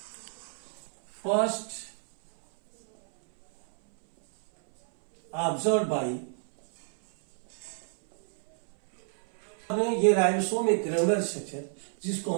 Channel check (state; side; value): silent; left; 59 dB below the other